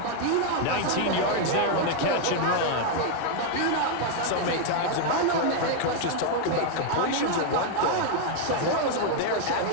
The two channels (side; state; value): both; different; correlation 0.00